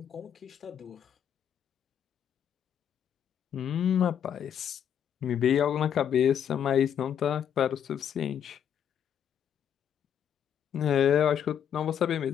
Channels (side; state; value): right; quieter; 8.9 dB